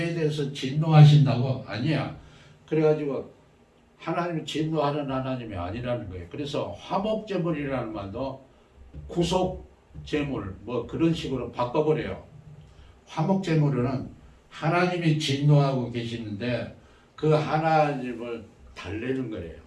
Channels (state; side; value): identical; both; correlation 1.00